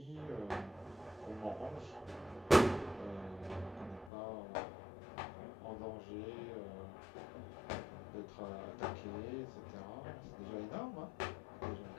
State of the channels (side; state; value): right; drops out; at 4.1 s